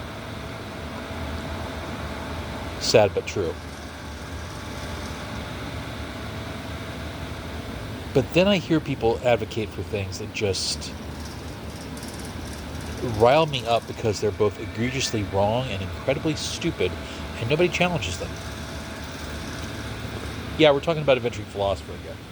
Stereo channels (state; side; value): identical; both; correlation 1.00